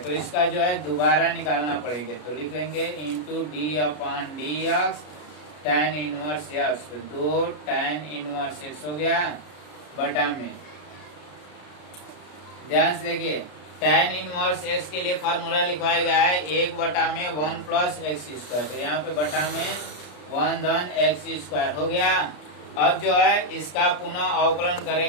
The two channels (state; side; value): late; right; 33 ms